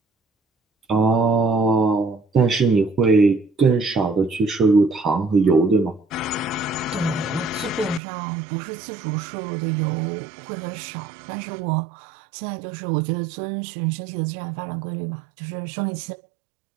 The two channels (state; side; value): drops out; left; at 8.0 s